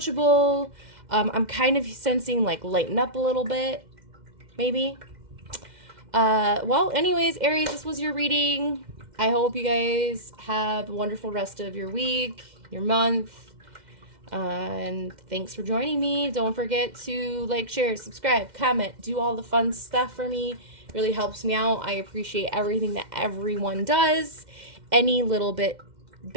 I'm kind of sensing like lighten up a little bit, maybe. Well, anyways, Aries, this was your reading. I hope you guys have a wonderful rest of your week, your month. And thanks for joining me. Don't forget to like, share, subscribe, comment, do all the fun stuff for me. It really helps me out. I appreciate everything that everyone does. Any little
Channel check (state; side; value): late; left; 2.1 ms